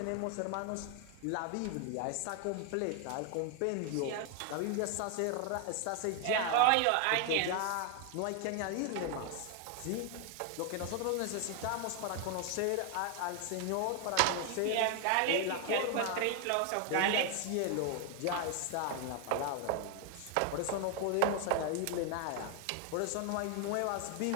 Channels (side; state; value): both; different; correlation 0.00